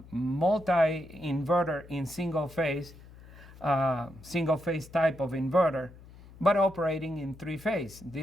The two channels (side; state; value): left; noise; hum, 20 dB below the sound